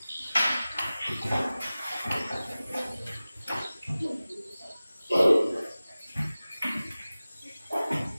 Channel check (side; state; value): both; inverted; correlation -0.97